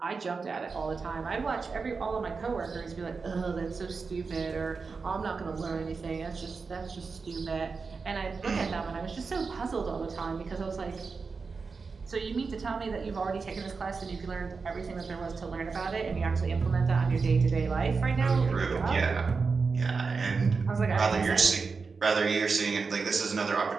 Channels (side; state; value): left; quieter; 4.7 dB